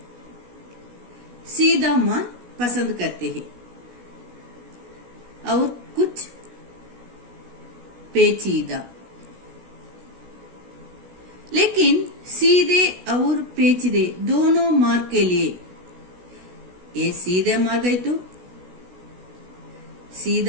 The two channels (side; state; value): left; late; 16 ms